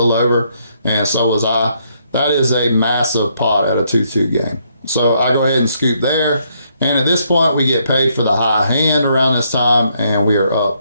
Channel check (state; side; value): inverted; both; correlation -0.73